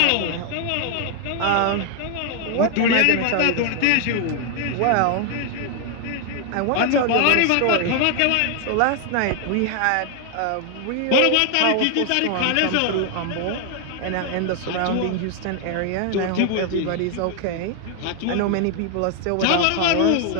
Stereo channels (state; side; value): different; both; correlation 0.00